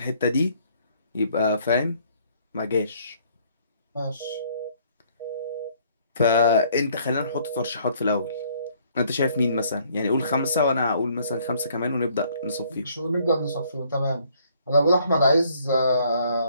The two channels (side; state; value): both; inverted; correlation -0.63